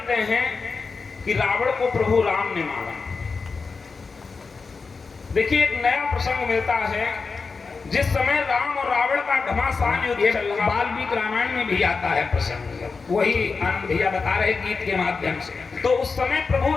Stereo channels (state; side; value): quieter; right; 4.6 dB